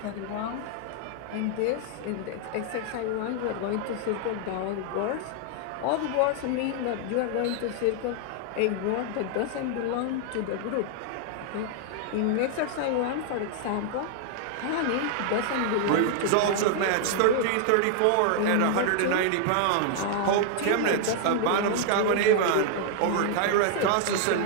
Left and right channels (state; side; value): different; both; correlation 0.00